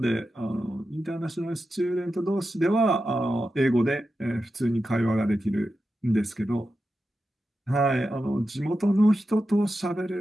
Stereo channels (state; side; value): normal; both; correlation 0.90